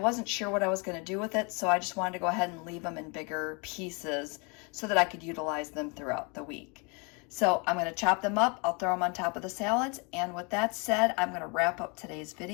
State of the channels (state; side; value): quieter; right; 32.3 dB